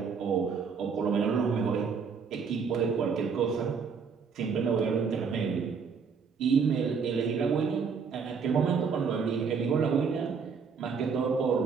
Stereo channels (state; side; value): quieter; left; 5.8 dB